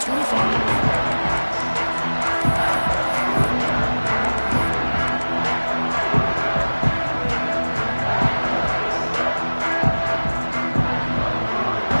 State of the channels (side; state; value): both; inverted; correlation -1.00